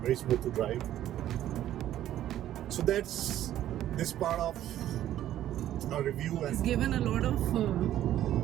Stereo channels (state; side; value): quieter; left; 12.4 dB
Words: Very smooth to drive. So that's this part of our review. He's given a lot of